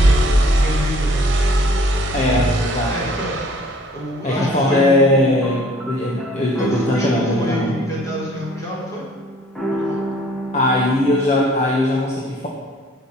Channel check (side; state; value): both; normal; correlation 0.56